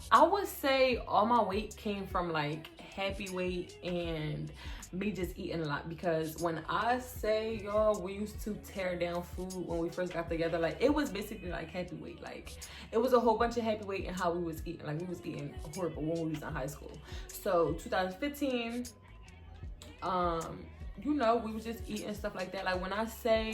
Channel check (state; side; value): identical; both; correlation 1.00